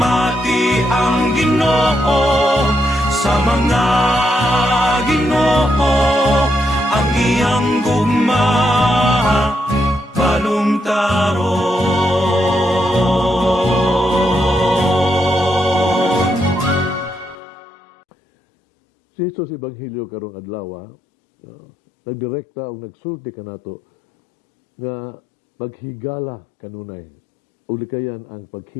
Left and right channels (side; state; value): right; drops out; at 17.4 s